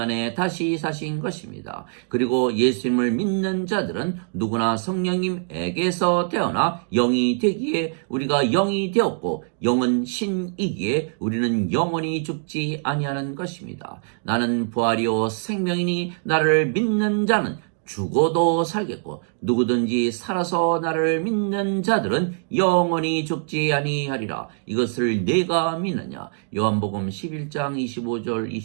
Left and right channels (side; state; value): left; silent; 63 dB below the other